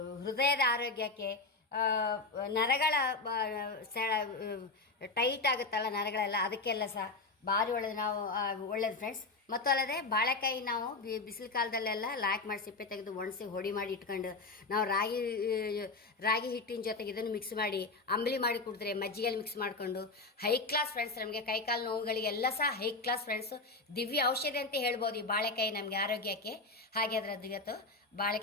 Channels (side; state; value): right; quieter; 3.6 dB